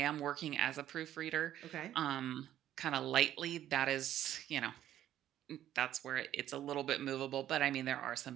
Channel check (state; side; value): quieter; left; 11.9 dB